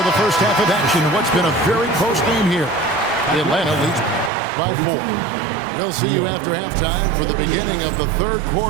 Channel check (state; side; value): drops out; left; at 4.3 s